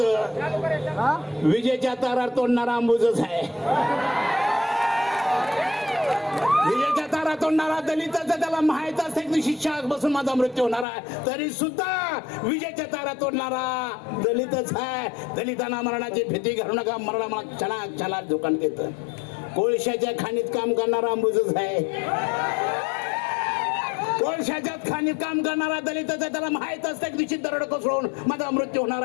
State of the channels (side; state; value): right; drops out; at 10.9 s